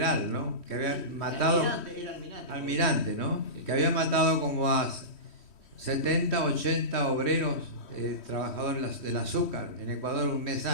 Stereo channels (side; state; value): right; late; 3.1 ms